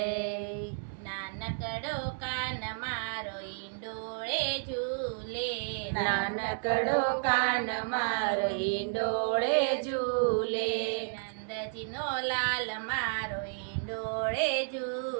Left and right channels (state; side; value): silent; left; 57 dB below the other